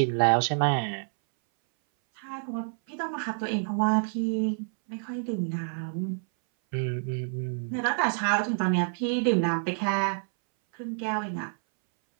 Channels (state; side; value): silent; left; 59 dB below the other